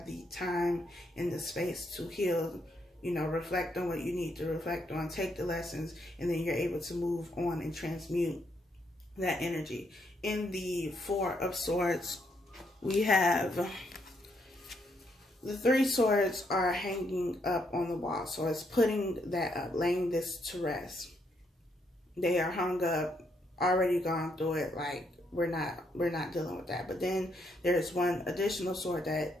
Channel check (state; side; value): normal; both; correlation 0.75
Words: the time and the space to heal. Reflect on what you need to reflect on, take the lessons, and then you're able to move on and transmute that energy. In the Four of Swords, we have the Three Swords are hanging up on the wall. So it's putting that up, laying this to rest. They are hung up, already gone through it, like we're not dealing with that. But then there's one additional sword that